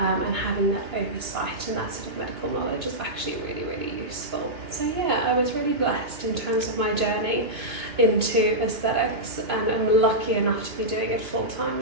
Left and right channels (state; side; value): late; left; 2.5 ms